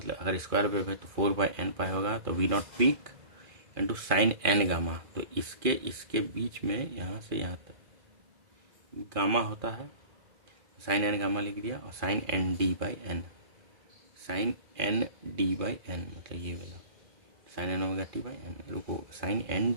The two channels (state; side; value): late; left; 2.4 ms